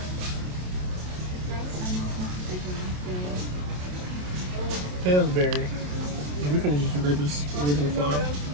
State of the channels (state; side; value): late; left; 27 ms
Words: Pillsbury. We can just grab this original flower.